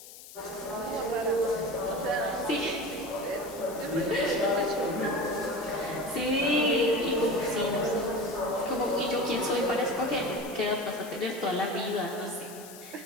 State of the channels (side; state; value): left; noise; hiss, 16 dB below the sound